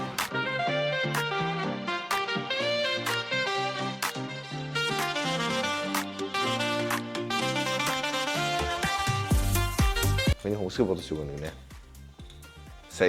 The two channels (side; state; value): both; identical; correlation 1.00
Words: Миний хүмүүсээ бодож өгнө гинэ.